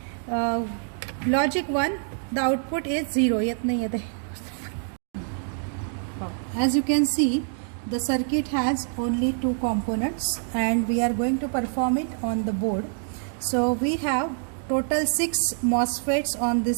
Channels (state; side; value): silent; left; 61 dB below the other